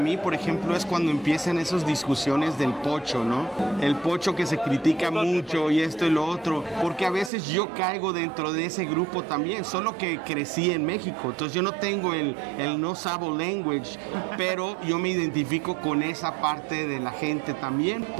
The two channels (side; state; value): left; drops out; at 7.3 s